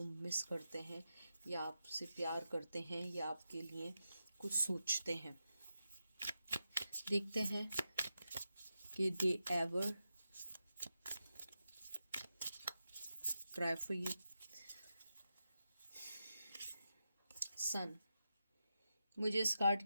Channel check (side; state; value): both; inverted; correlation -0.89